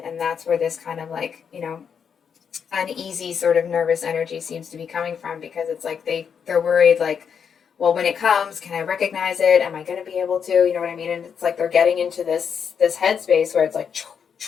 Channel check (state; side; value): quieter; right; 7.1 dB